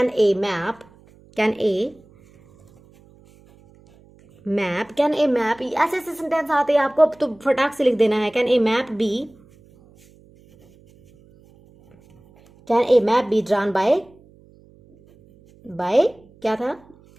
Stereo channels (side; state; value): right; noise; hum, 28 dB below the sound